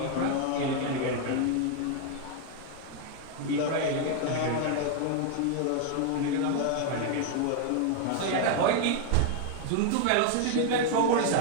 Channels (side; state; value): both; different; correlation 0.01